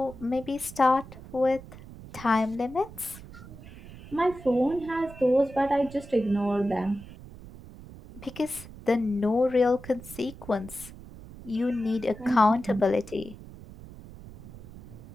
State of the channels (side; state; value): right; noise; rumble, 16 dB below the sound